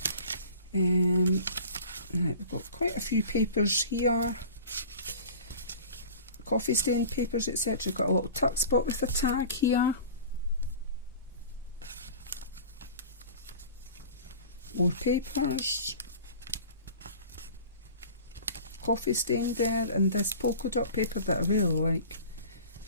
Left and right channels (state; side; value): inverted; both; correlation -0.41